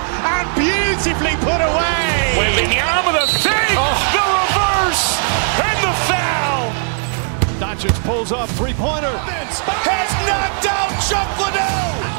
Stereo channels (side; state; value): left; silent; 68 dB below the other